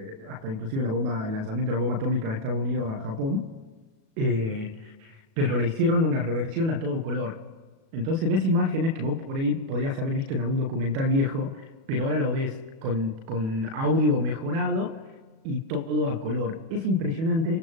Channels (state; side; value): late; left; 37 ms